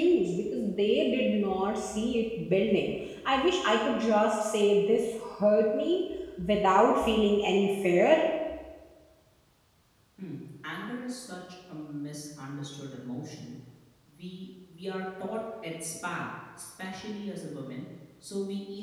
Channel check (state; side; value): identical; both; correlation 1.00